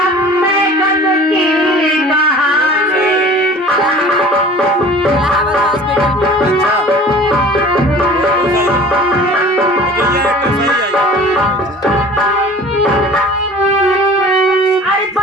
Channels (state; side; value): normal; both; correlation 0.44